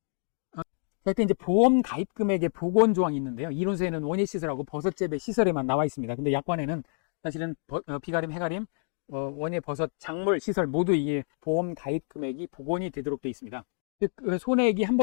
이때 이제 보험 가입 금액의 복원 조항이 있는데요. 이론서에는 원예 시설하고 버섯재배 시설에만 나와 있습니다. 근데 약관에는 사실은 비가림, 해가림, 원예 버섯 작물 시설 모두 이게 보험 가입 금액이 복원이 되도록 되어 있습니다. 즉 손해액이 한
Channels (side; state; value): right; silent; 59 dB below the other